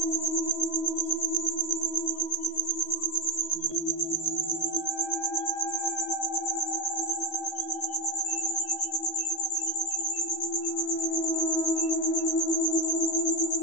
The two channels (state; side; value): late; right; 13 ms